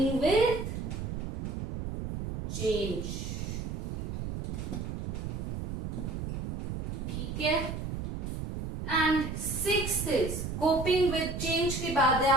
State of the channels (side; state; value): right; noise; rumble, 5 dB below the sound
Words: with change. ठीक है, and sixth is coping with change के बाद है